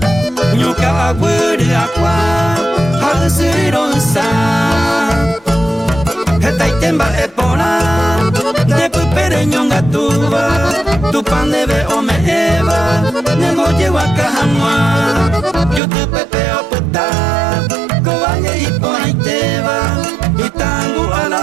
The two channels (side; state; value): left; drops out; at 15.8 s